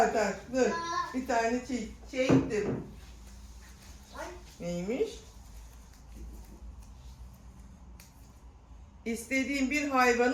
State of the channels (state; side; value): identical; both; correlation 1.00